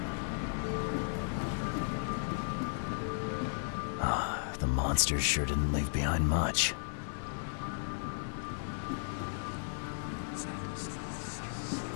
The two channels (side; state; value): right; silent; 54 dB below the other